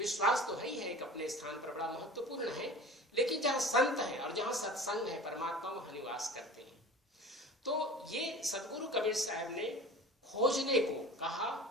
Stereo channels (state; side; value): normal; both; correlation 0.38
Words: तो है ही है, एक अपने स्थान पर बड़ा महत्वपूर्ण है, लेकिन जहाँ संत है और जहाँ सत्संग है, परमात्मा वहाँ निवास करते हैं। तो ये सदगुरु कबीर साहब ने खोजने को कहा,